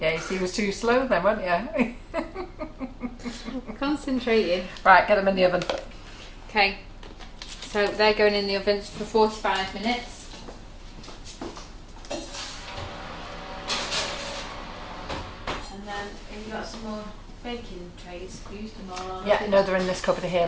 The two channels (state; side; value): identical; both; correlation 1.00